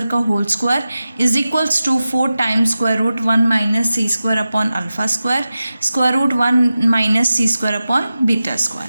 का whole square is equals to 4 times square root 1 minus C square upon alpha square root 1 minus C square upon beta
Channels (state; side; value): inverted; both; correlation -0.94